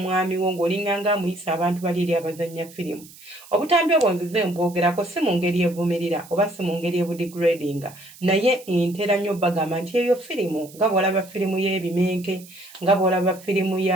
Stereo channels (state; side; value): noise; right; hiss, 21 dB below the sound